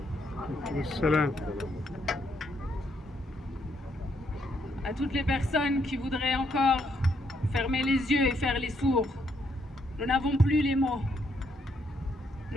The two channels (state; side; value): normal; both; correlation 0.74